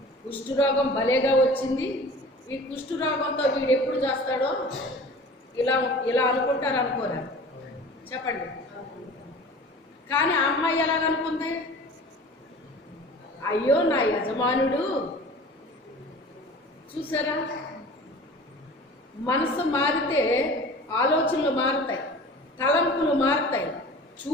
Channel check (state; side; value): normal; both; correlation 0.41